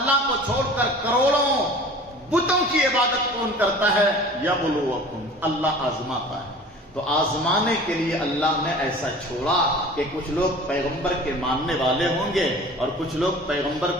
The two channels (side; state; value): both; normal; correlation 0.43